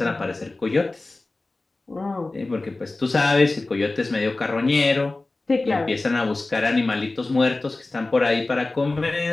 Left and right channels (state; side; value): quieter; right; 3.2 dB